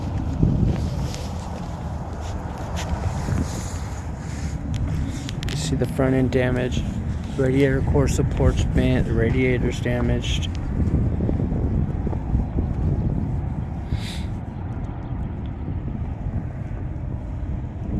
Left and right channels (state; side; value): identical; both; correlation 1.00